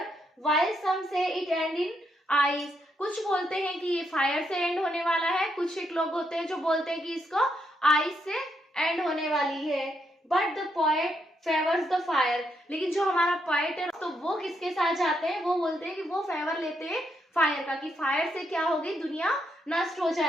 while some say it and in ice. कुछ बोलते हैं कि ये फायर से एंड होने वाला है, कुछ एक लोग होते हैं जो बोलते हैं कि इसको आइस से एंड होने वाली है। But the poet favours the fire, लेकिन जो हमारा पोएट है तो वो किसके साथ जाते हैं, वो बोलते हैं कि वो फेवर लेते हैं फायर का, कि फायर से क्या होगी, दुनिया नष्ट हो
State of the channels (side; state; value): both; normal; correlation 0.78